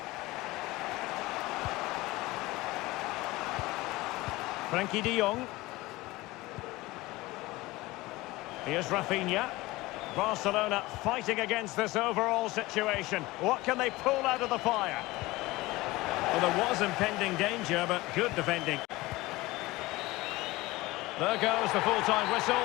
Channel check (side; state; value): right; quieter; 20.1 dB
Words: Frankie de Jong. Here's Rafinha. Barcelona fighting against this overall situation. What can they pull out of the fire? Well, there was impending danger, but good defending. There goes the full-time whistle,